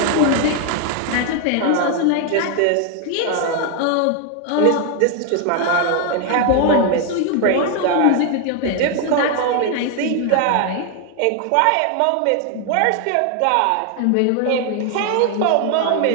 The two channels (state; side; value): different; both; correlation 0.01